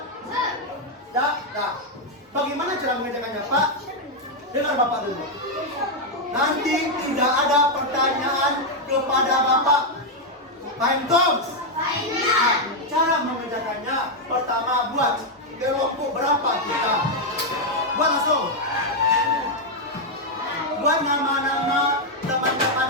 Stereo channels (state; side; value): normal; both; correlation 0.00